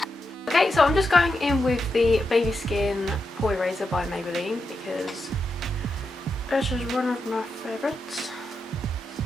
Okay, so I'm just going in with the Baby Skin Pore Eraser by Maybelline because this is one of my favourites.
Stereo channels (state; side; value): normal; both; correlation 0.86